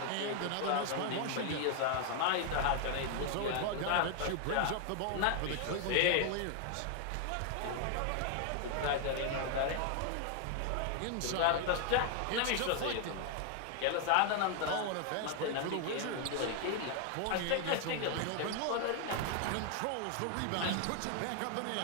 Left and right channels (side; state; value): both; different; correlation 0.00